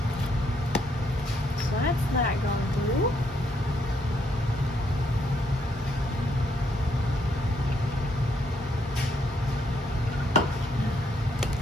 So that's that gone through.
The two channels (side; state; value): both; normal; correlation 0.73